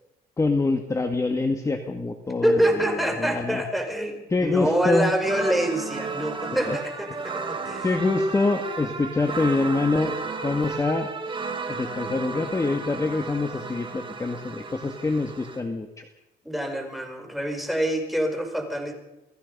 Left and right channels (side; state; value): both; normal; correlation 0.81